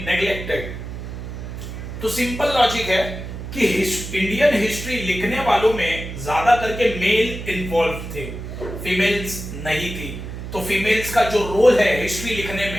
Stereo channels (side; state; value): right; noise; hum, 9 dB below the sound